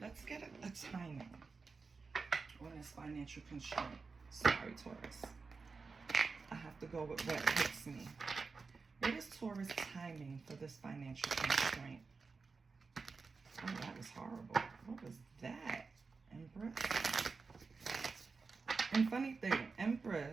get a timing on this financial constraint. Sorry, Taurus. I have to go with what hits me. What is Taurus timing for this financial constraint? Oh, that was horrible. What was that? Empress? And funny thing,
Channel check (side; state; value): left; quieter; 4.5 dB